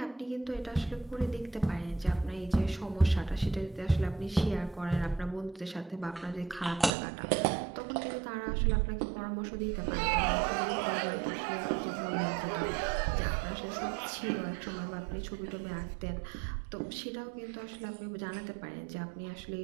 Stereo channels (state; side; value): drops out; left; at 6.9 s